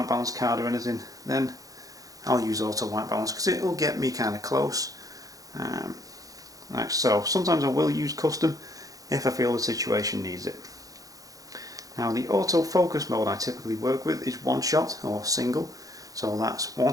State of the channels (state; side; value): late; left; 0.17 ms